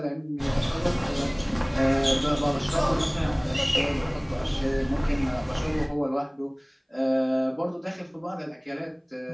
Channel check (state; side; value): identical; both; correlation 1.00